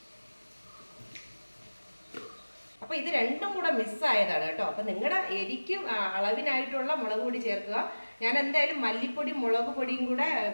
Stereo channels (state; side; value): inverted; both; correlation -1.00